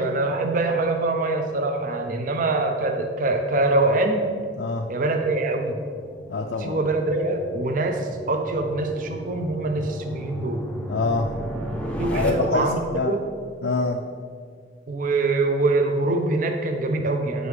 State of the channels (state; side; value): normal; both; correlation 0.23